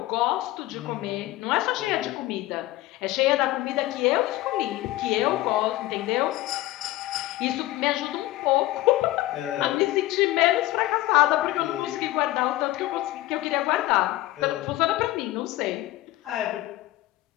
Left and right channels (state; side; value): quieter; right; 17.0 dB